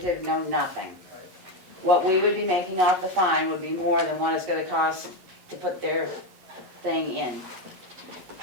no nothing. What we would be making off the fine would be more than what it's gonna cost to put their thing in.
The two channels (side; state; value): left; late; 11 ms